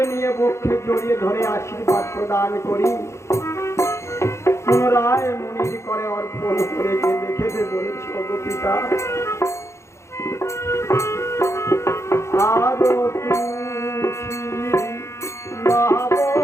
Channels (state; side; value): late; right; 0.13 ms